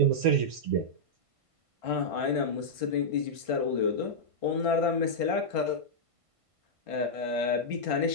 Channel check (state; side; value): late; left; 1.5 ms